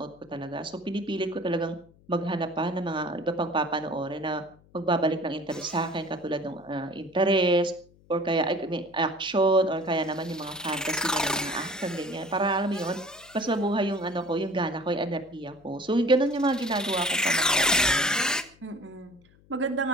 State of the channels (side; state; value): left; noise; hum, 28 dB below the sound